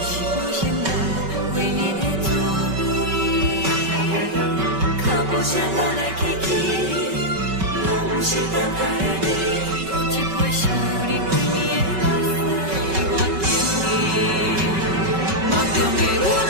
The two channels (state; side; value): late; left; 5.3 ms